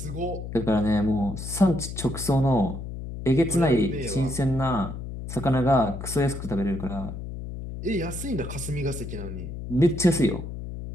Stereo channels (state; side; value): noise; left; hum, 8 dB below the sound